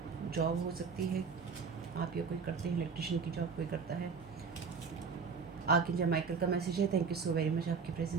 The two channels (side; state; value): left; quieter; 5.5 dB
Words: जॉब हो सकती है, आप या कोई करते हैं, इलेक्ट्रिशियन की जॉब कोई करता है। आर्कएंजल माइकल का मैसेज है, thank you so very much आपके